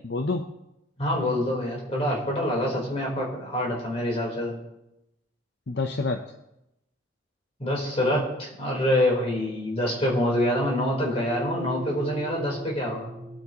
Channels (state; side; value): normal; both; correlation 0.51